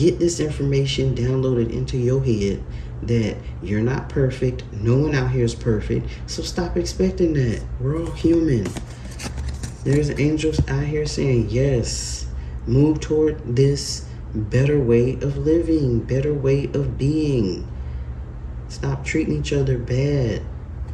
this information downloaded into your head that you're not perfect. No one out here is perfect. So stop expecting that. We're all human. There's angels out here saying, yes, move toward this better way of living, better way of being. Stop treating each other bad.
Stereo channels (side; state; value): both; identical; correlation 1.00